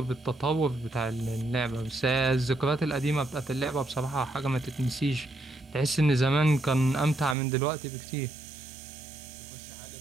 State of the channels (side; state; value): left; drops out; at 7.4 s